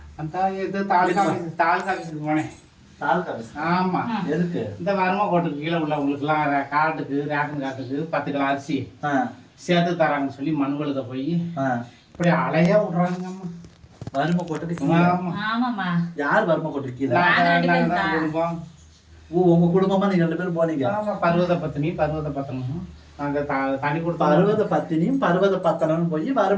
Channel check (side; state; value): both; identical; correlation 1.00